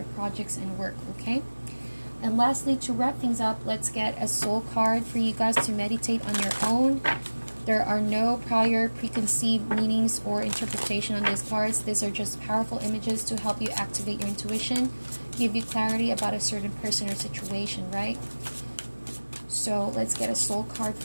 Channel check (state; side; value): inverted; both; correlation -1.00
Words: projects and work, okay? And lastly, to wrap things up, let's get a soul card for you guys to meditate on your own. There are no prior preconceived meanings or interpretation on these cards. These are just powerful images to help you activate your intuition, give you clarity about a certain person or situation, right? So let's get a soul card